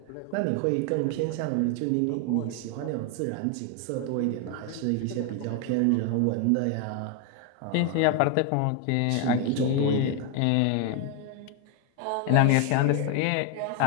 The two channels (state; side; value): different; both; correlation 0.01